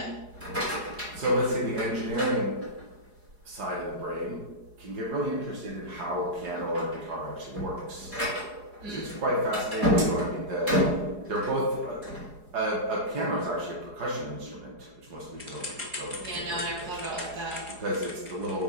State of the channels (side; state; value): left; late; 4.8 ms